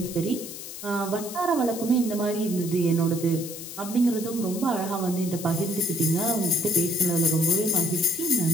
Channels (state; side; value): noise; left; hiss, 10 dB below the sound